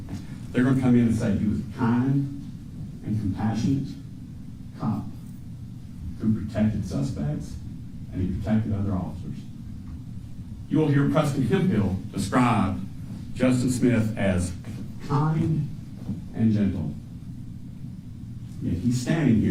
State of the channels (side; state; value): both; identical; correlation 1.00